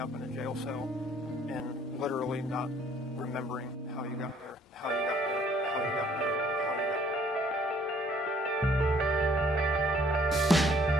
up in a jail cell and literally not remembering how you got there, how you got there, how you got there, how you got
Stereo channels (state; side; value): normal; both; correlation 0.61